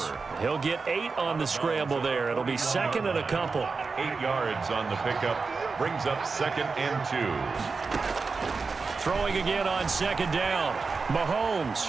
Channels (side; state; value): left; quieter; 4.5 dB